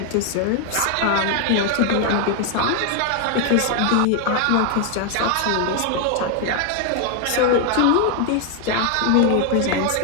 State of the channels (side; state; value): both; different; correlation 0.00